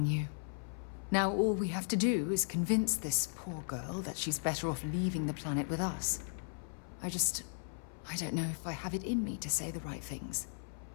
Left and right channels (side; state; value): right; silent; 53 dB below the other